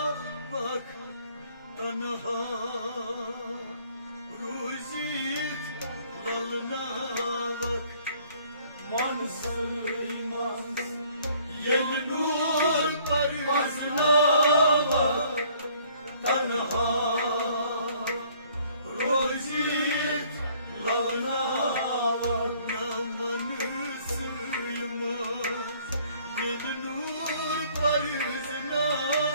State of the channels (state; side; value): inverted; both; correlation -0.60